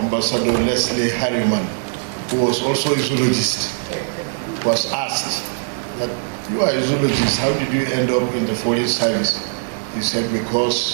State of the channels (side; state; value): left; silent; 56 dB below the other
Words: Leslie Harriman, who was also a zoologist, was asked that, "You are a zoologist, how did you end up in the foreign service?" He said,